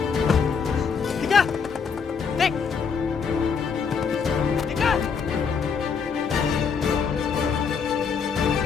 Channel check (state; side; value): quieter; right; 6.0 dB